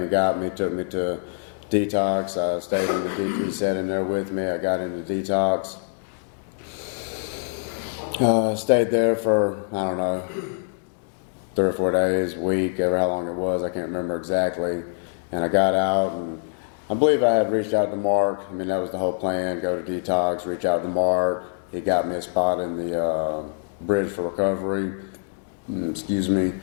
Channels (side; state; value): right; silent; digital silence